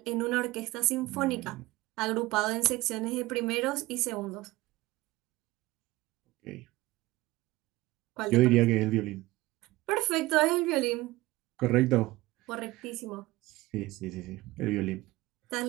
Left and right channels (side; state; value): left; quieter; 19.2 dB